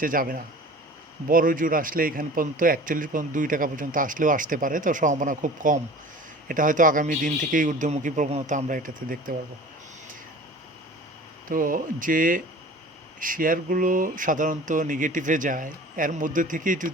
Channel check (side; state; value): both; normal; correlation 0.42